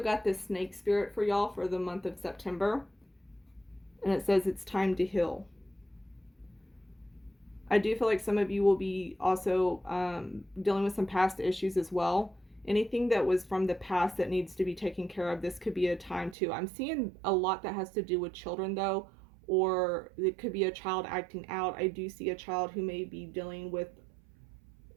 got this snake spirit for y'all for the month of September, and it says it's time to heal. I do feel like some of you will be also dealing with some past issues as well. Anything that was from the past that needs to be taken care of, this could be a time too. I'm seeing a lot that has to do with children though, or it could be a child acting out. I do see a child who may be dealing with,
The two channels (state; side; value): drops out; left; at 16.4 s